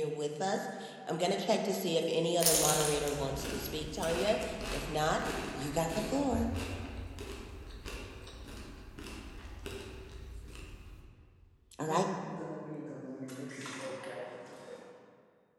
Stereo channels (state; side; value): identical; both; correlation 1.00